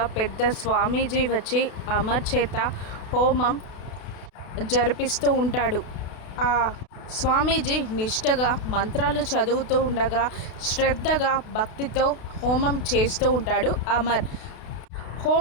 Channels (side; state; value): right; late; 32 ms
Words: పెద్ద స్వామీజీ వచ్చి అమర్ చేత హోమం జరిపిస్తూ ఉంటాడు. ఆ స్వామీజీ నిష్టగా మంత్రాలు చదువుతూ ఉండగా శ్రద్ధగా భక్తితో హోమం చేస్తూ ఉంటాడు అమర్.